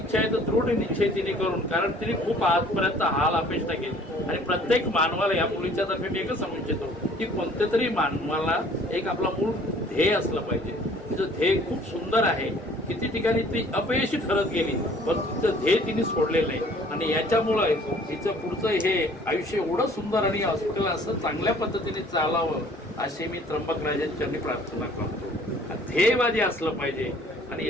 आहे तर दृढ निश्चय तिने करून, कारण तिने खूप आजपर्यंत हाल अपेक्षा केली आणि प्रत्येक मानवाला या मुलीच्या तर्फे मी एकच सांगू इच्छितो की कोणत्या तरी मानवाला एक आपला मूळ ध्येय असलं पाहिजे. तिचं ध्येय खूप सुंदर आहे. किती ठिकाणी ती अपयशी ठरत गेली पण तिचं ध्येय तिने सोडलेलं नाही आणि याच्यामुळे तिचं पुढचं हे आयुष्य एवढं सुंदर आणि हॉस्पिटल असं चांगल्या पद्धतीने चालावं अशी मी त्र्यंबक राजांच्या प्रार्थना करतो. ध्येयवादी असलं पाहिजे आणि हे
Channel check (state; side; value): normal; both; correlation 0.54